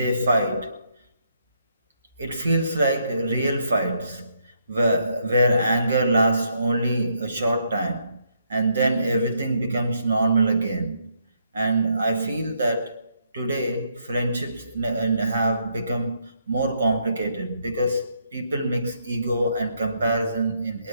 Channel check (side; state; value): both; inverted; correlation -0.75